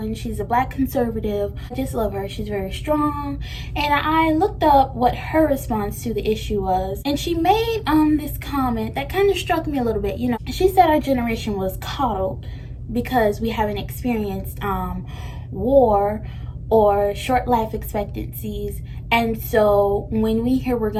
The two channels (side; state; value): both; identical; correlation 1.00